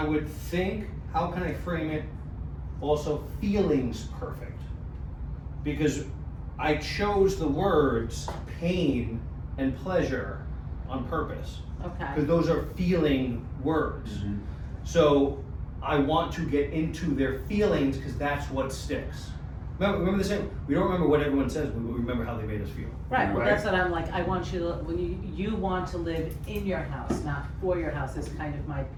would think, how can I frame it, also feelings perfect? Because I chose the words pain and pleasure on purpose, Okay, because those are feeling words. So I want to get into their feelings, because that's what sticks. Remember the saying, we don't remember what everyone says, we remember how they made us feel. right, well, that's what I'm like, I want you to, when you want to live in your house, not for your house, is kind of my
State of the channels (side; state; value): both; identical; correlation 1.00